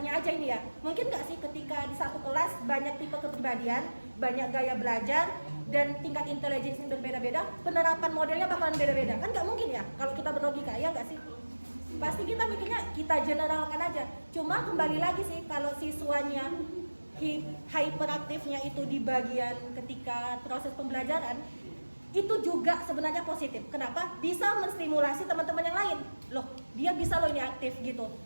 aja ini ya, mungkin nggak sih ketika di satu kelas banyak tipe kepribadian, banyak gaya belajar, dan tingkat intelijensi yang berbeda-beda, penerapan modelnya bakalan beda-beda, kan nggak mungkin ya kalau kita berlogika, ya nggak sih? Pasti kita mikirnya kita generalkan aja. Cuma kembali lagi sih, kalau siswanya hyperaktifnya itu di bagian ketika proses pembelajaran, itu juga sebenarnya positif. Kenapa? Bisa menstimulasi teman-teman yang lain. Loh, dia bisa loh ini aktif gitu.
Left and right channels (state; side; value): inverted; both; correlation -1.00